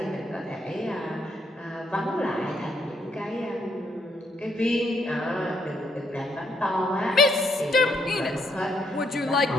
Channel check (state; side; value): normal; both; correlation 0.73